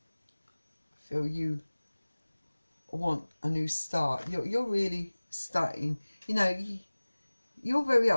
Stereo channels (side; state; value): both; inverted; correlation -1.00